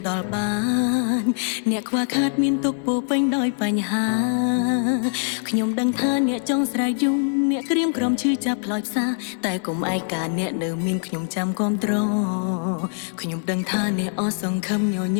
ដល់បានអ្នកខ្វះខាតមានទុក្ខពោពេញដោយបញ្ហាខ្ញុំដឹងថាអ្នកចង់ស្រែកយំអ្នកក្រៀមក្រំឈឺចាប់ផ្លោយផ្សាតែកុំឯកាអ្នកនៅមានខ្ញុំចាំគាំទ្រខ្ញុំដឹងថាអ្នកអស់សង្ឃឹមញ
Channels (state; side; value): silent; right; 63 dB below the other